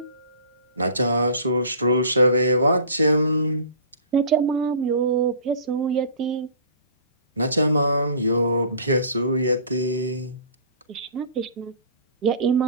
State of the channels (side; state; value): both; inverted; correlation -0.44